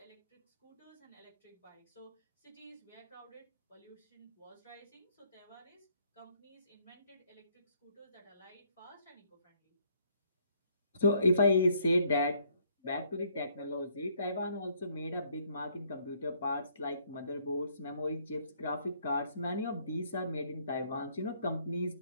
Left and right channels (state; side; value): inverted; both; correlation -0.66